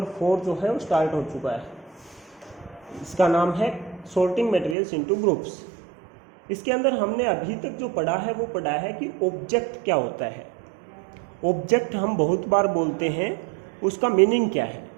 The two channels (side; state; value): left; drops out; at 4.8 s